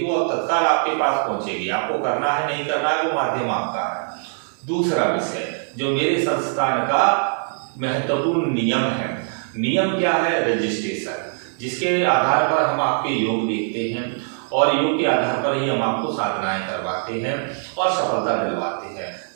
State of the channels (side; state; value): left; silent; digital silence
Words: वो अब तत्काल आपके पास पहुंचेगी। आपको करना है नहीं करना है वो माध्यम आपका है। दूसरा विषय जो मेरे संस्थान का महत्वपूर्ण नियम है, नियम क्या है? रजिस्ट्रेशन, जिसके आधार पर हम आपके योग देखते हैं और योग के आधार पर ही हम आपको साधनाएं करवाते हैं और सफलता दिलवाते हैं।